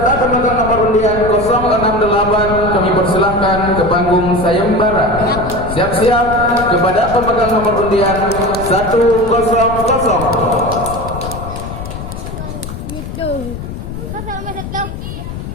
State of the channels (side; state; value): left; noise; rumble, 8 dB below the sound